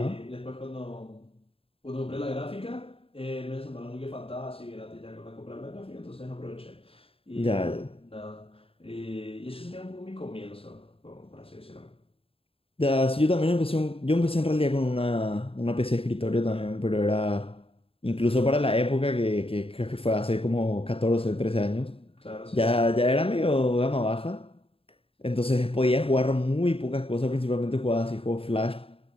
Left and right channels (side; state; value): right; late; 0.27 ms